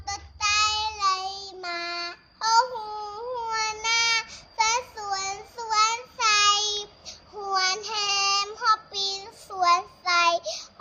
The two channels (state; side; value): identical; both; correlation 1.00